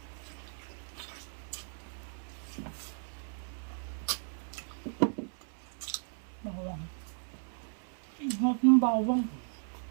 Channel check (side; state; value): left; silent; 54 dB below the other